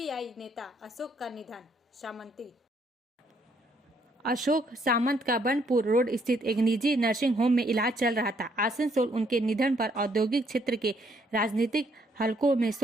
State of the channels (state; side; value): normal; both; correlation 0.70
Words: नेता अशोक का निधन, सामंती। अशोक सामंत का बनपुर रोड स्थित एक निजी नर्सिंग होम में इलाज चल रहा था। आसनसोल उनके निधन पर औद्योगिक क्षेत्र के राजनीतिक हलकों में